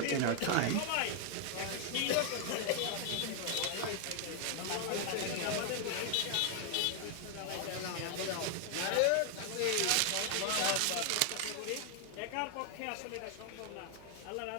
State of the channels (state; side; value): different; both; correlation 0.00